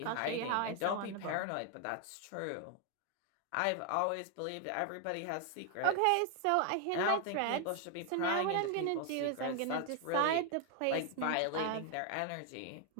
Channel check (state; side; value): different; both; correlation 0.00